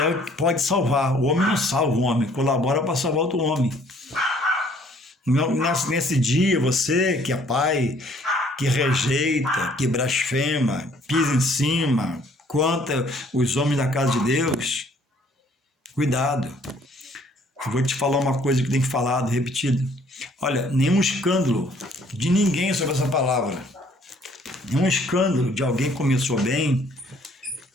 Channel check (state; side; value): normal; both; correlation 0.60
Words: que pode salvar. O homem não salva o homem, colabora para salvar outro homem. Nesse dia, você que é pai, que rejeita, que blasfema, pisa em cima, contra os homens da casa de Deus, cuidado. Eu vou te falar uma coisa que tem falado, repetido. Olha, nenhum escândalo de ninguém sobre essa palavra. Nenhum escândalo de alguém que começou bem,